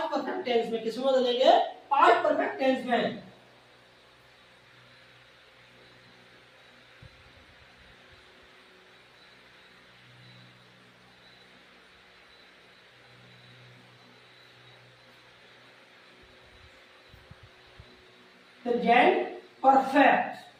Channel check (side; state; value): both; identical; correlation 1.00